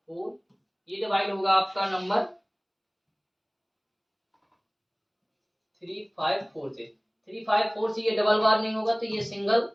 ये डिवाइड होगा आपका नंबर 354 से। 354 से ये डबल बार नहीं होगा, तो ये सिंगल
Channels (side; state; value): both; identical; correlation 1.00